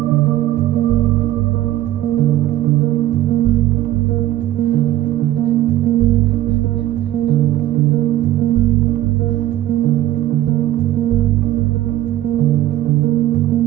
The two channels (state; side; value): quieter; left; 14.0 dB